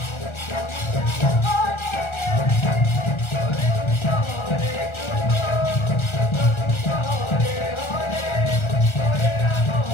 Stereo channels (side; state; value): right; late; 1.3 ms